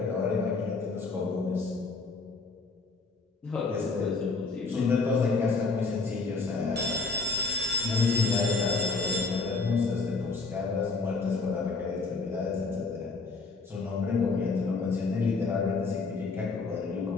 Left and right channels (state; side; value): quieter; right; 4.1 dB